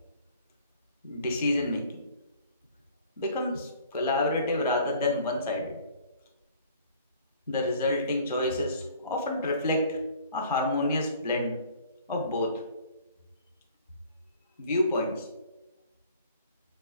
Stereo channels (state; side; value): inverted; both; correlation -0.52